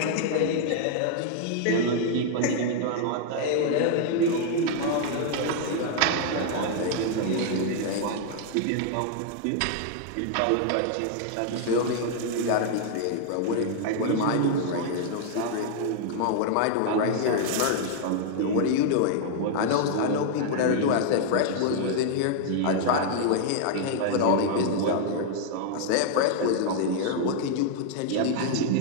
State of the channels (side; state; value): both; different; correlation 0.00